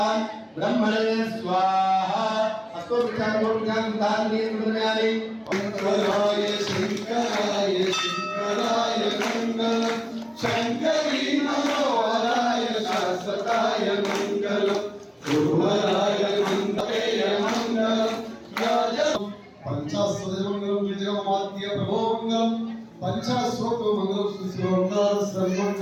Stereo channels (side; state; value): both; identical; correlation 1.00